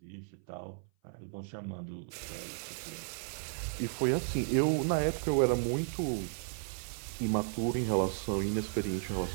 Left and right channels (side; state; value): left; silent; 55 dB below the other